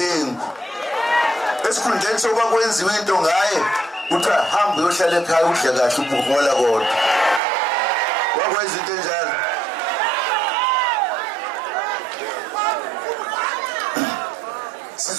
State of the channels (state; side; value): drops out; left; at 7.4 s